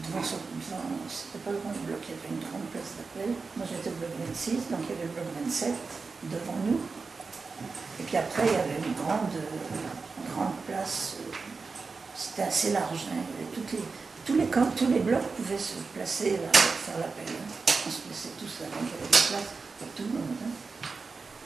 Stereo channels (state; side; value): quieter; left; 4.5 dB